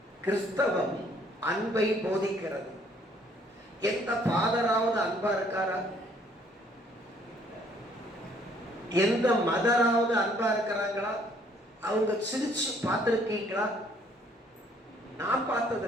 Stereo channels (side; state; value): both; normal; correlation 0.62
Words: கிறிஸ்தவம் அன்பை போதிக்கிறது. எந்த ஃபாதராவது அன்பா இருக்காரா? எந்த மதராவது அன்பா இருக்கிறாங்களா? அவங்க சிரிச்சு பார்த்திருக்கீங்களா? நான்